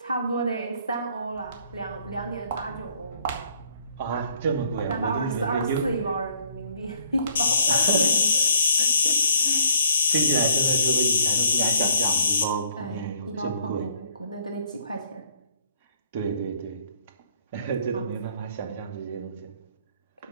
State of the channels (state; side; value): inverted; both; correlation -0.62